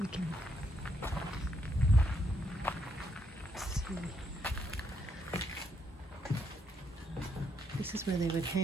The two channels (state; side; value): normal; both; correlation 0.75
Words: we can see. This is where they would